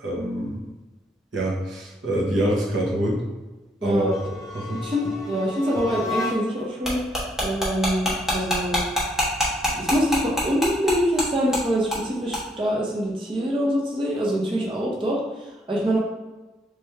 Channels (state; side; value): normal; both; correlation 0.71